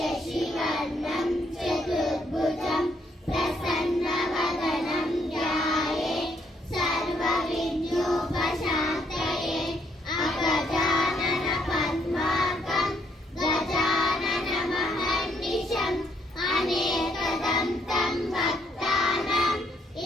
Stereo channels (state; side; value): normal; both; correlation 0.71